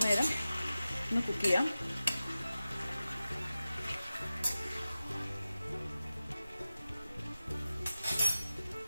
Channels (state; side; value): inverted; both; correlation -0.95